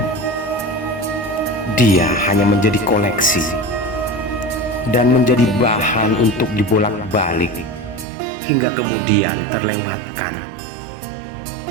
Dia hanya menjadi koleksi dan menjadi bahan untuk dibolak-balik hingga kemudian terlewatkan.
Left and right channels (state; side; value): drops out; left; at 8.1 s